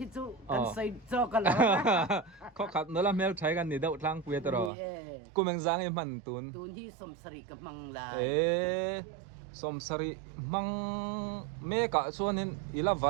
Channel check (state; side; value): drops out; left; at 4.7 s